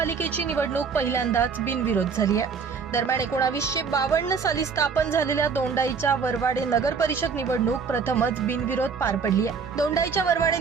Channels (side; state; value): left; quieter; 5.6 dB